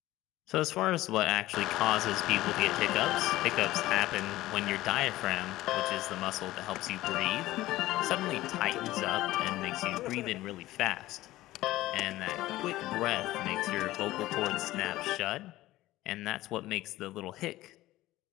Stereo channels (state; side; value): quieter; right; 16.6 dB